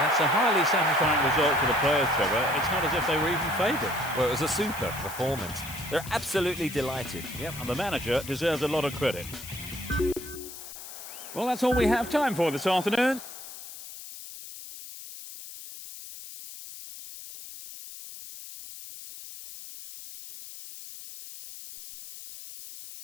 a highly satisfying result for the players, Trevor. It's not as if they were even favourites. Well, it was a super performance. They're absolutely delighted. Yep, and the manager deserves a lot of credit. Well, that's all we have time for this afternoon.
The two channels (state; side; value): noise; left; hiss, 13 dB below the sound